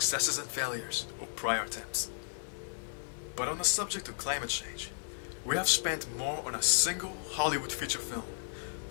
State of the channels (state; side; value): silent; right; 55 dB below the other